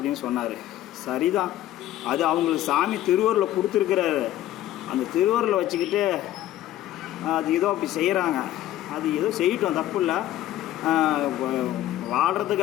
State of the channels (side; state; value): right; quieter; 13.6 dB